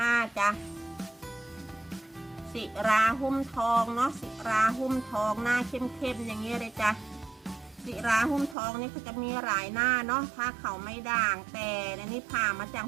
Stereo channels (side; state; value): left; drops out; at 8.6 s